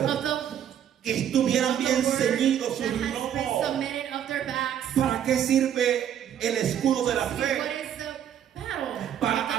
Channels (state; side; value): quieter; left; 9.8 dB